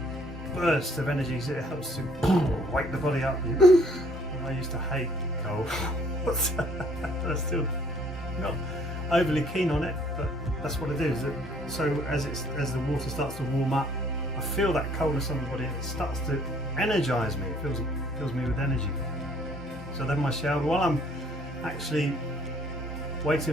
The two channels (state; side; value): normal; both; correlation 0.61